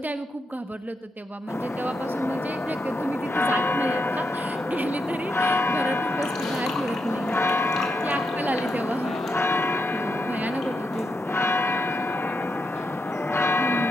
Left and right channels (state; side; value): normal; both; correlation 0.83